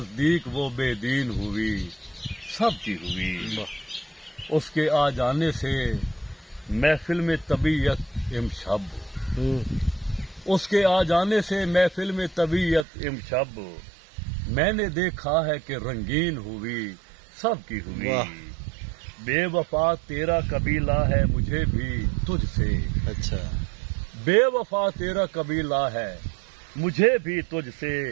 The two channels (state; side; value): drops out; left; at 12.9 s